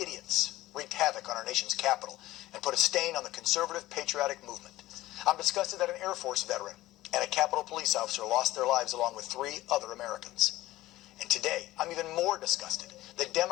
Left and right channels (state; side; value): quieter; right; 16.7 dB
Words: wreaked havoc on our nation's capital and put a stain on the conservative patriotic movement. I'm disgusted that an Air Force veteran and a Capitol police officer lost their lives along with 3 other Americans. And today, I'm even more disgusted that